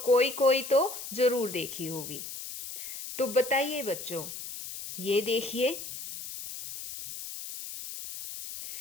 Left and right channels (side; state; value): left; noise; hiss, 9 dB below the sound